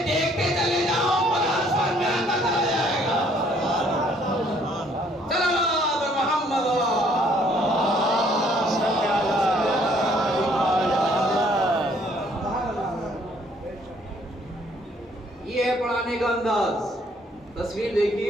دیکھتے چلے جاؤ, قرآن سمجھ میں آتا چلا جائے گا. چلو محمد یہ ہے پڑھانے کا انداز. تصویر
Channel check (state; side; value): normal; both; correlation 0.63